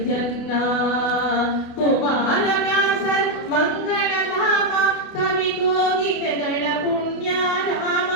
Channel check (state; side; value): late; right; 28 ms